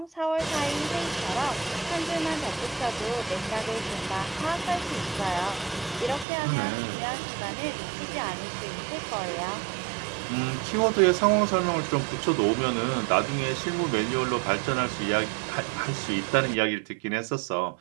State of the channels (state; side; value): drops out; left; at 6.2 s